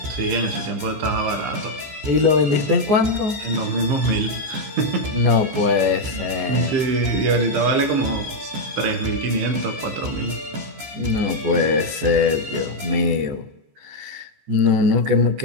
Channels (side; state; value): left; late; 14 ms